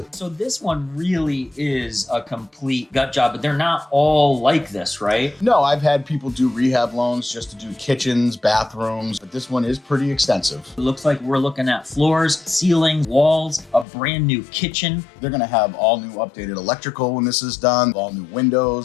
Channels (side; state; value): right; drops out; at 13.9 s